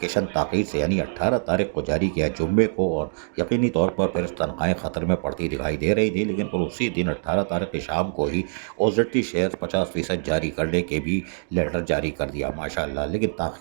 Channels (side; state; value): left; silent; digital silence